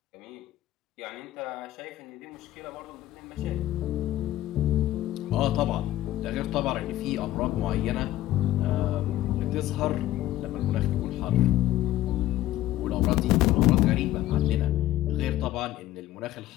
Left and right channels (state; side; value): quieter; right; 14.6 dB